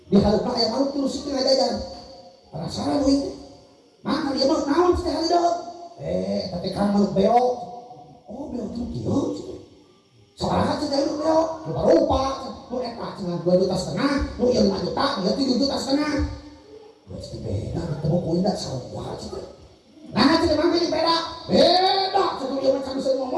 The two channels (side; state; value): both; identical; correlation 1.00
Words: diharupna aya manuk tilu siki ngajajan penasaran wing mah dia mah naon teh halideuh tapi kan manuk beok beok teh kieu sabaraha teh manuk beok rupa nu eta cenah 2,5 juta nu ieu 5 juta ieu 7,5 juta geus beda ketemu ku indah salah cenah nah cenah mah beda cenah ieu mah bisa